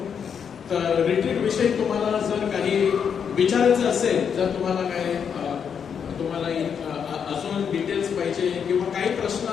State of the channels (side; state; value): right; quieter; 7.3 dB